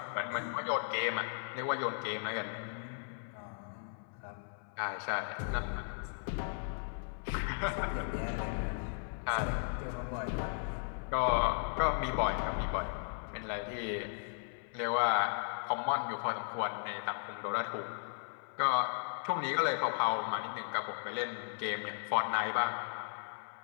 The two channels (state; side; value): silent; right; 54 dB below the other